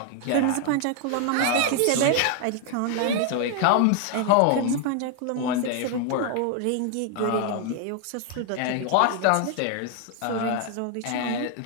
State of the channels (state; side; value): different; both; correlation 0.00